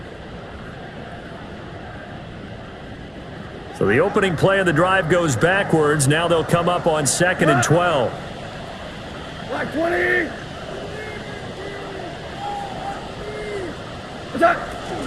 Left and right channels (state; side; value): identical; both; correlation 1.00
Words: So the opening play of the drive goes backwards. Now they'll come up on 2nd and 12. Black 20. Attack.